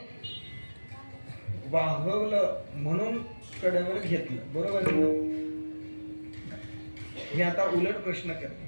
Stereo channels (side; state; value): both; inverted; correlation -1.00